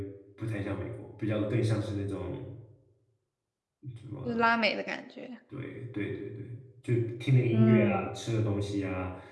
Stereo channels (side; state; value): both; identical; correlation 1.00